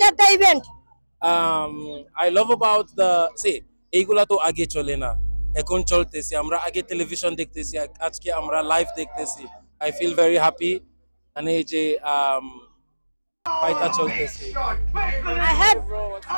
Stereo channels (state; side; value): inverted; both; correlation -1.00